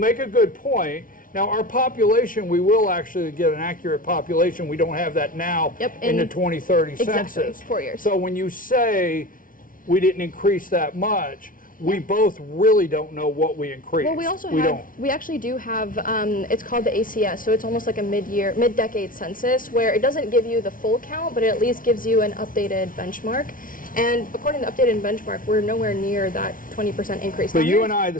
a good point. Now, our population, we will actually get an accurate population. We don't have that now in the 2030 census. Exactly, 4 years. So when you say we didn't increase that much, we both really don't know what we increased. Well, we also we actually do have, it's called the ACS, so it's almost like a mid-decade census, where it doesn't give you the full count, but it at least gives you an updated benchmark. And according to the updated benchmark, we're nowhere near that 20% increase. But you and I,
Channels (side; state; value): right; late; 0.39 ms